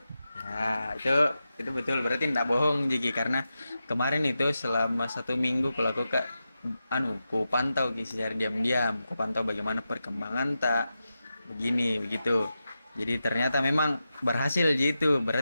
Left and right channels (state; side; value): inverted; both; correlation -0.90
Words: Ya, itu betul, berarti tidak bohong Jiki, karena kemarin itu selama 1 minggu ku pantau secara diam-diam, ku pantau bagaimana perkembangan tak begini begitu. Jadi ternyata memang berhasil gitu,